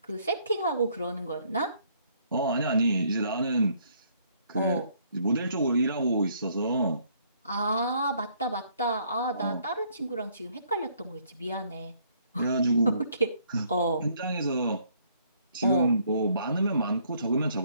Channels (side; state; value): both; inverted; correlation -0.66